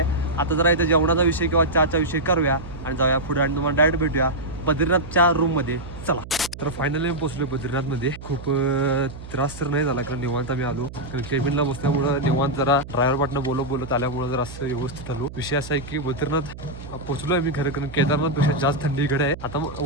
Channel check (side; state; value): right; noise; hum, 13 dB below the sound